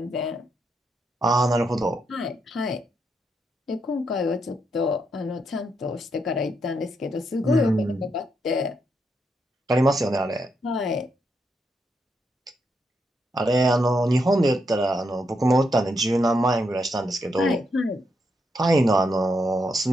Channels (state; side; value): normal; both; correlation 0.80